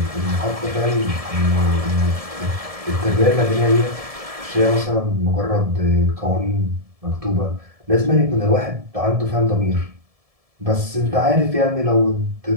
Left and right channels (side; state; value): left; late; 1.7 ms